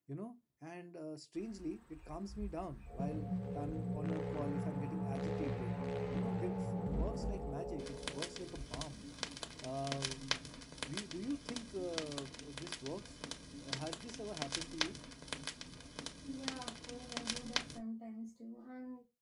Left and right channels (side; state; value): both; identical; correlation 1.00